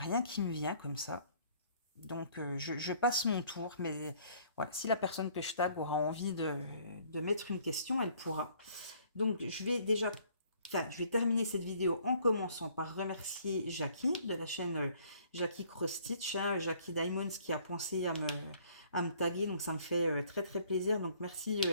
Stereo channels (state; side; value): inverted; both; correlation -0.59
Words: qui me vient comme ça. Donc, je passe mon tour. Mais voilà, si la personne que je tag aura envie de mettre une question, elle pourra. Donc, je vais terminer cette vidéo en commençant par remercier Jackie de la chaîne Jackie Cross Stitch, hein, Jackie Diamonds qui a pensé à me taguer. Donc, ça me fait très très plaisir. Donc, merci